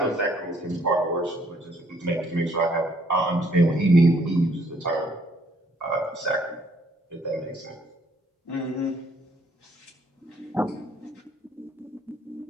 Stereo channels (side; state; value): both; normal; correlation 0.65